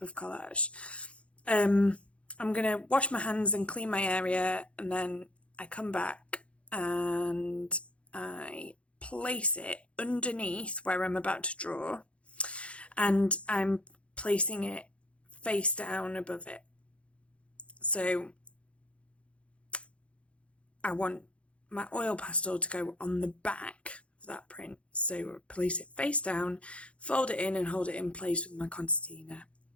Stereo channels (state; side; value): late; right; 0.061 ms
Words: of collage. I'm going to wash my hands and clean my area, and then I come back and I place it underneath where I'm about to draw, and I'm placing it face down above it. So I want my oil pastel to go on the back of that print. So place it face down, fold it in and hold it in place with my concertina,